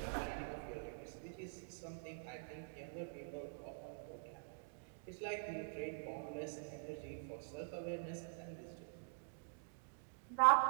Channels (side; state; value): left; silent; digital silence